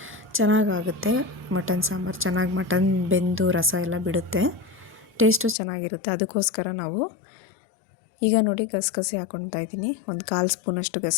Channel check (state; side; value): drops out; right; at 5.6 s